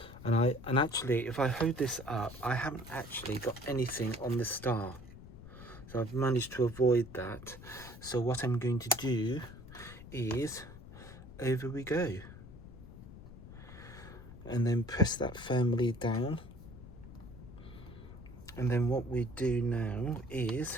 And actually, if I hold this up, I haven't actually got anything on the star. So I've managed to avoid that. So what I'm going to do is, over we go. And then press that firmly down. And then what we do now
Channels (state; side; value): noise; left; rumble, 15 dB below the sound